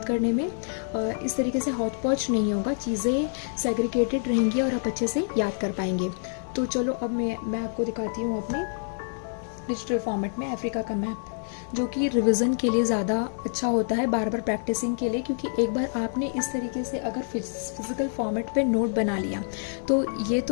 करने में इस तरीके से हौच पौच नहीं होगा, चीज़ें सेग्रीगेटेड रहेंगी और आप अच्छे से याद कर पाएंगे। तो चलो अब मैं आपको दिखाती हूँ अपने डिजिटल फॉर्मेट में अफ्रीका का मैप, जो कि रिवीजन के लिए ज़्यादा अच्छा होता है, बार बार प्रैक्टिसिंग के लिए। क्योंकि एक बार आपने इस तरीके से अगर फिजिकल फॉर्मेट पे नोट बना लिया तो ये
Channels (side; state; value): right; silent; digital silence